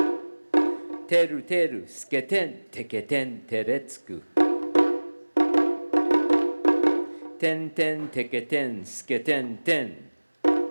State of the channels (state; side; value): inverted; both; correlation -1.00